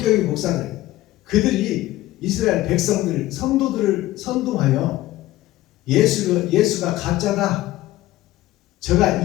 목사들, 그들이 이스라엘 백성들, 성도들을 선동하여 예수가 가짜다, 저가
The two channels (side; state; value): right; quieter; 16.3 dB